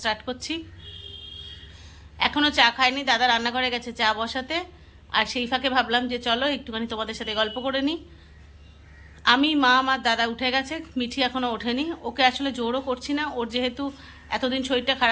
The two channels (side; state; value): both; identical; correlation 1.00